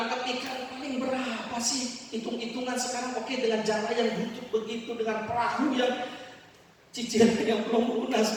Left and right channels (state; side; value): identical; both; correlation 1.00